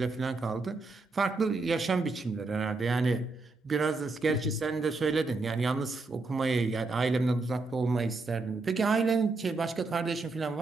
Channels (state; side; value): quieter; left; 3.6 dB